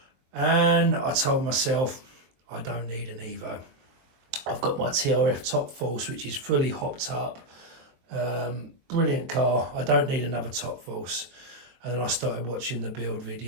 And I told myself, I don't need an Evo. I've got my TRF Top Force, which is fully hopped up. Brilliant car. I don't need another Top Force. And then I started watching the build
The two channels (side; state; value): left; late; 23 ms